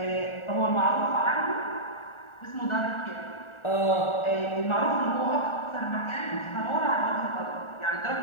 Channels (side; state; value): right; late; 1.4 ms